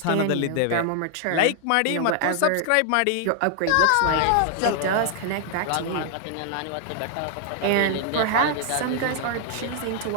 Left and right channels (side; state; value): both; different; correlation 0.00